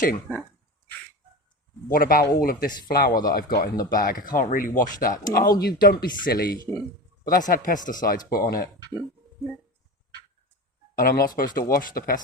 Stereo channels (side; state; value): both; normal; correlation 0.28